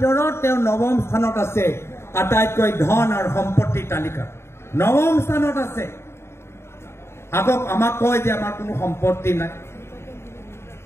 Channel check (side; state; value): right; late; 0.12 ms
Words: তেওঁ নৱম স্থানত আছে আটাইতকৈ ধন আৰু সম্পত্তিৰ তালিকা নৱম স্থানত আছে আকৌ আমাক কয় যে আমাৰ কোনো সম্পত্তি নাই